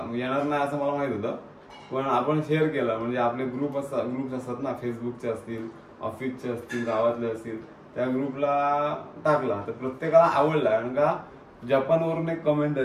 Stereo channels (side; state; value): both; identical; correlation 1.00